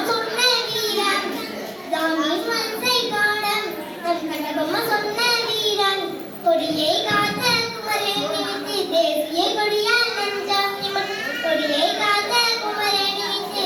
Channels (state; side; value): identical; both; correlation 1.00